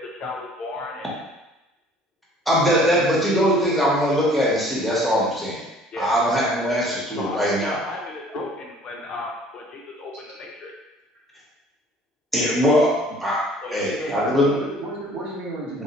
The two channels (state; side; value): normal; both; correlation 0.53